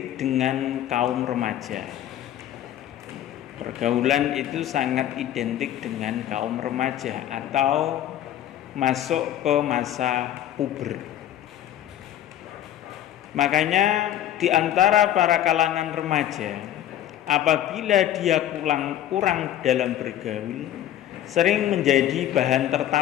dengan kaum remaja. Pergaulan itu sangat identik dengan kaum remaja atau masuk ke masa puber. Makanya di antara para kalangan remaja, apabila dia kurang dalam bergaul, sering menjadi bahan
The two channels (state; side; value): quieter; right; 11.9 dB